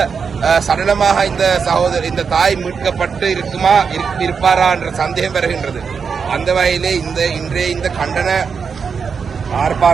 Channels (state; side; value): quieter; left; 5.9 dB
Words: சடலமாக இந்த தாய் மீட்கப்பட்டு இருப்பாரா என்ற சந்தேகம் வருகின்றது. அந்த வகையிலே இன்றைய இந்த கண்டன